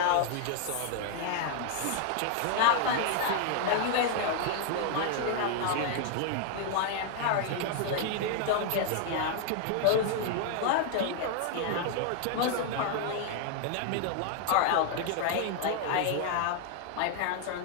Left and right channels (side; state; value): both; different; correlation 0.00